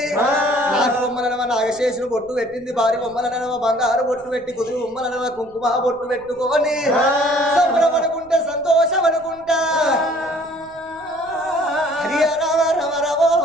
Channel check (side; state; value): left; noise; rumble, 27 dB below the sound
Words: నాటి బొమ్మలనవ నాగశేషుని బొట్టు పెట్టింది భారీ బొమ్మలనవ బంగారు బొట్టు పెట్టి కుదురు బొమ్మలనవ కుంకుమ బొట్టు పెట్టుకొని సంబరపడుకుంటే సంతోషపడుకుంటా హరి రామ రమ రమో